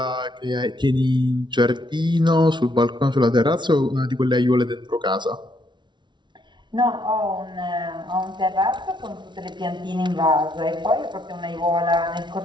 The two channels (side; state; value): left; late; 0.22 ms